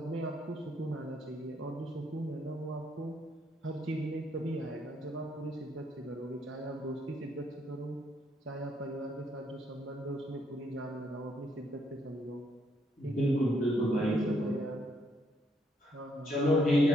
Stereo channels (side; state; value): both; normal; correlation 0.72